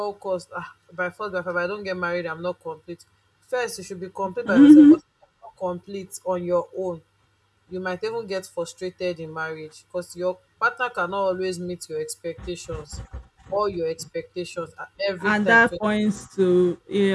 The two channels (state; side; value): identical; both; correlation 1.00